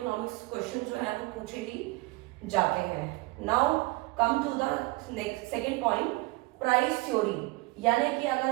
क्वेश्चन जो है वो पूछे ही जाते हैं। Now come to the second point, price theory. यानी कि अगर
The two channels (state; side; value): quieter; left; 22.9 dB